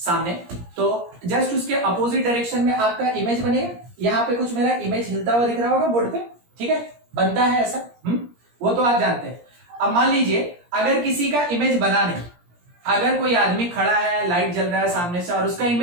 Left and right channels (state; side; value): late; left; 17 ms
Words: तो जस्ट उसके अपोजिट डायरेक्शन में आपका इमेज बनेगा। यहाँ पे कुछ मेरा इमेज हिलता हुआ दिख रहा होगा बोर्ड पे, ठीक है, बनता है ऐसा, वो तो आप जानते हैं। अब मान लीजिए अगर किसी का इमेज बना नहीं, अगर कोई आदमी खड़ा है, लाइट जल रहा है सामने से और उसका